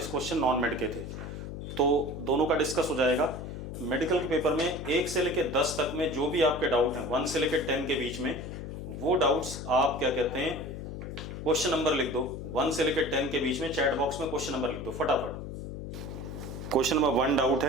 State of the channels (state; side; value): noise; left; hum, 8 dB below the sound